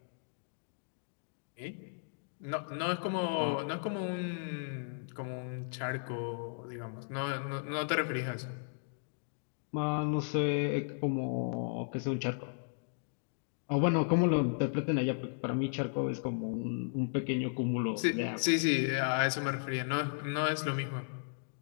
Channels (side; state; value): right; silent; digital silence